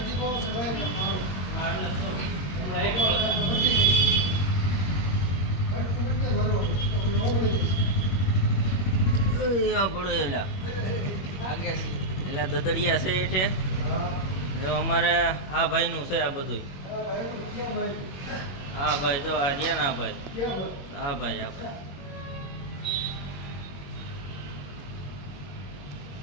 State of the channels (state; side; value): late; right; 21 ms